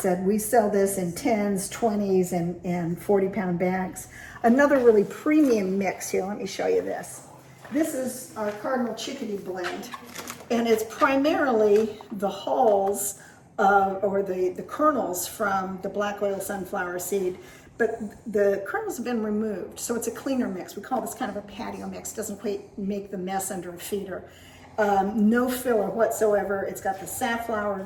we sell this in 10s, 20s, and 40-pound bags. Another really premium mix here, let me show you this. This is our Cardinal Chickadee blend, and it's primarily the hulls or the kernels from the black oil sunflower seed. But the kernels have been removed, so it's a cleaner mix. We call this kind of a patio mix. Doesn't quite make the mess under a feeder. No filler whatsoever. It's got the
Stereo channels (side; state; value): both; identical; correlation 1.00